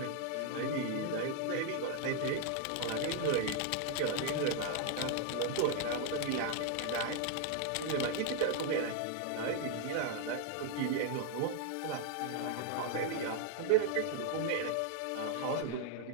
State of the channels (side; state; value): both; different; correlation 0.00